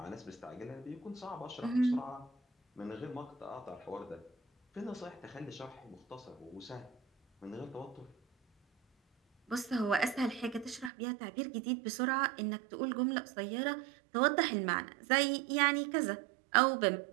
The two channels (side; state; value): left; drops out; at 10.9 s